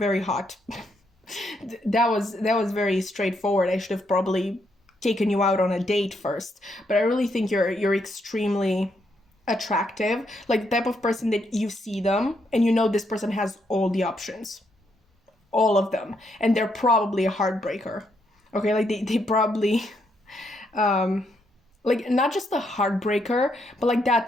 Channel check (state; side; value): normal; both; correlation 0.76